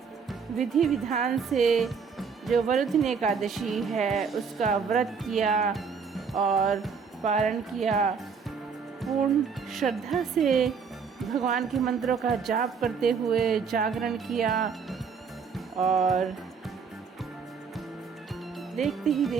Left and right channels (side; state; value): left; quieter; 5.9 dB